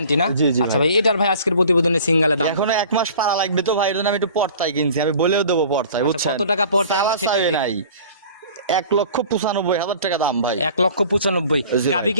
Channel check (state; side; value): inverted; both; correlation -0.46